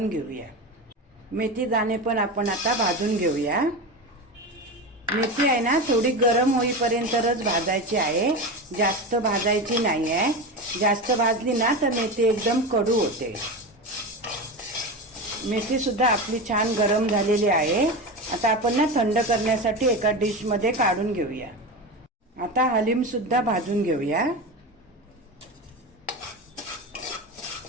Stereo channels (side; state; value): both; normal; correlation 0.23